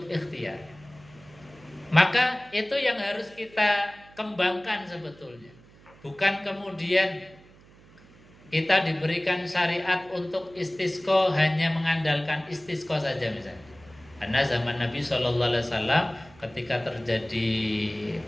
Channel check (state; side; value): noise; right; hum, 25 dB below the sound